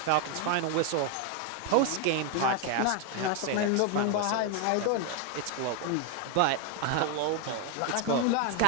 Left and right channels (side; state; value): both; different; correlation 0.01